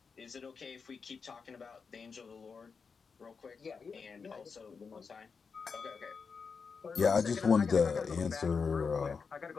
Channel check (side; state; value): right; quieter; 5.4 dB